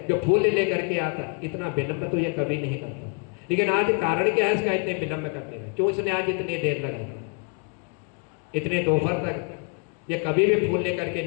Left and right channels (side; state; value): right; quieter; 36.2 dB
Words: जो फूल लेकर के आता, इतना विलंब तो ये कभी नहीं करता। लेकिन आज कारण क्या है इसका इतने विलंब करने का, क्यों इसने आज इतनी देर लगाई, इतने दोपहर तक ये कभी भी फूल लेकर के